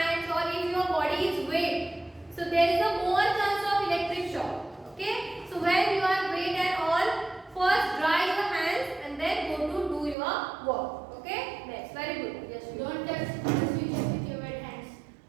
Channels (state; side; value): drops out; left; at 10.2 s